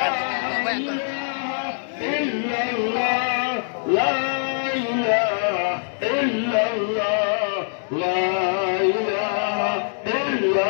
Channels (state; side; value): silent; right; 63 dB below the other